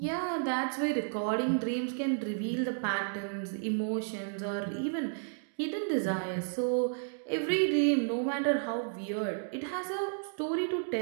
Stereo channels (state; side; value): silent; left; digital silence